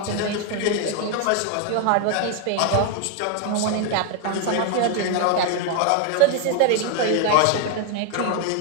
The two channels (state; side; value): different; both; correlation 0.00